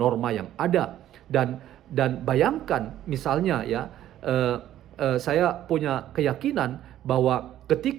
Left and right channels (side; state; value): left; quieter; 12.4 dB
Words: yang ada. Dan bayangkan misalnya ya, saya punya keyakinan bahwa